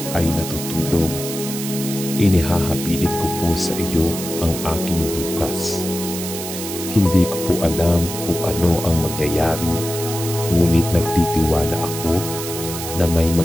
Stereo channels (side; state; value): right; noise; hiss, 7 dB below the sound